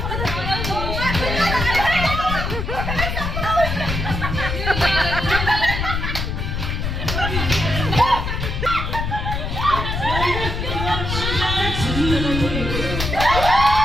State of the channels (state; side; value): noise; left; rumble, 3 dB below the sound